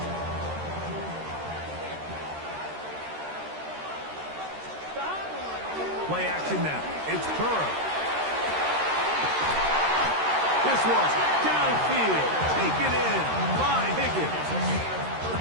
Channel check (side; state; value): left; late; 13 ms